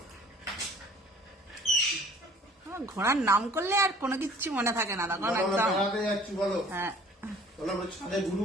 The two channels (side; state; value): both; normal; correlation 0.52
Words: ঘোড়ার নাম করলে আর কোনো কিছু মনে থাকে না তখন আমরা একদম। বেড়াতে যাচ্ছি বলো, হ্যাঁ, বলো আমরা ছাদে ঘুরু